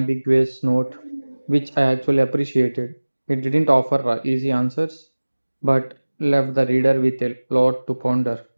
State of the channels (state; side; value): inverted; both; correlation -1.00